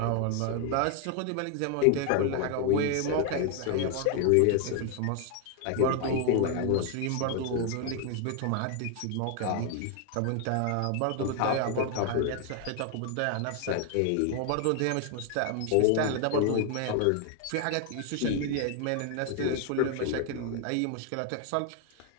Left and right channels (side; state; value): both; different; correlation 0.01